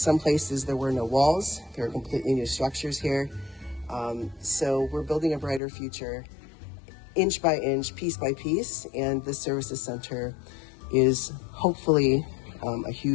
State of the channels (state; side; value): drops out; right; at 5.6 s